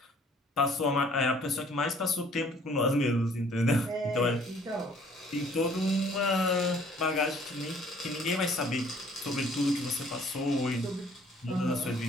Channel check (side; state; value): both; normal; correlation 0.57